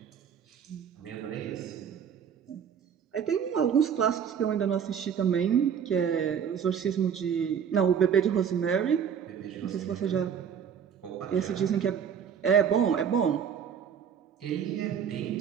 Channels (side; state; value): left; quieter; 7.8 dB